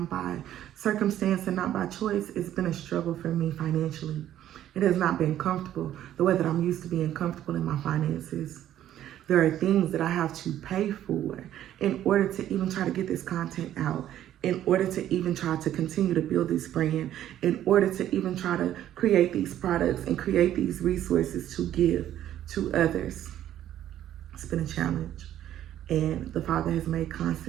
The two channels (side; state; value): left; quieter; 11.9 dB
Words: by circumstance and not by choice, it's been a struggle for me financially. It has not been comfortable the way that I'm used to being comfortable in my finances. There are things that I have to pay for in order to even try to get this content out, in order to even try to continue to build this brand, in order to even try to create these products and create these resources to give to others. It's been a challenge. And the Father has made